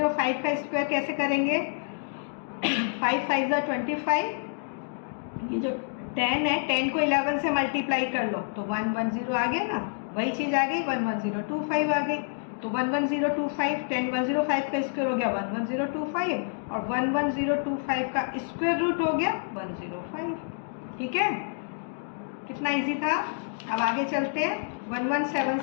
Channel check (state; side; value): silent; right; digital silence